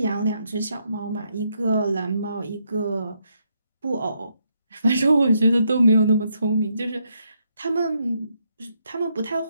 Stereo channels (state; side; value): inverted; both; correlation -0.77